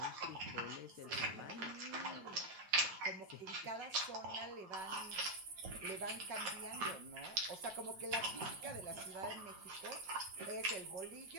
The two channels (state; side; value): late; left; 4.1 ms